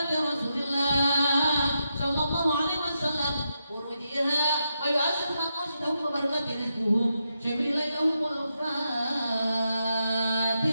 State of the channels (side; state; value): both; inverted; correlation -0.84